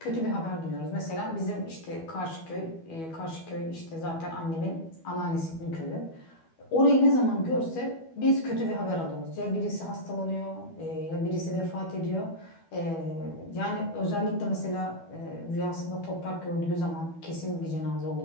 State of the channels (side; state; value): right; late; 12 ms